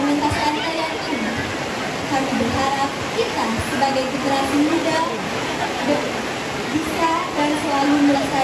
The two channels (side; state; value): both; identical; correlation 1.00